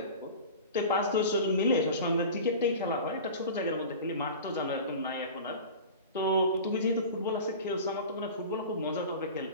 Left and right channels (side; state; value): both; inverted; correlation -0.35